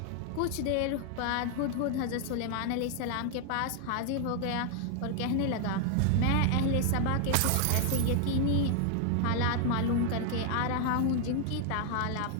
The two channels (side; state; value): both; different; correlation 0.00